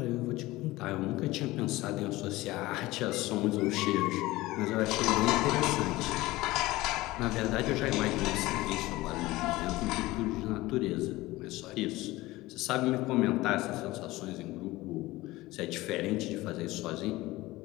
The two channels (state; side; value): quieter; right; 19.0 dB